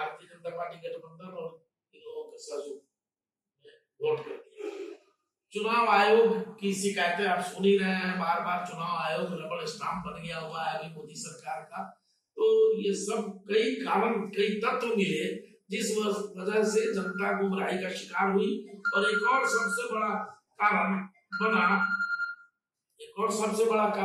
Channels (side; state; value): both; identical; correlation 1.00